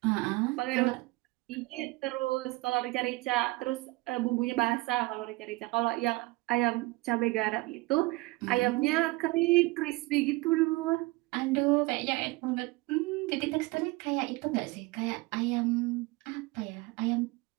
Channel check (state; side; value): quieter; left; 22.1 dB